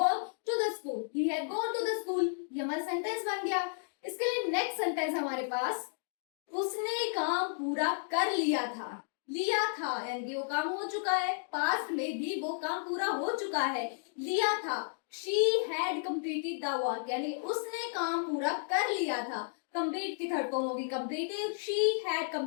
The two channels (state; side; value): silent; right; digital silence